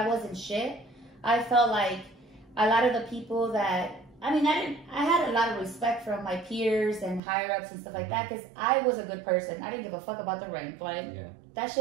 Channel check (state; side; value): drops out; left; at 7.2 s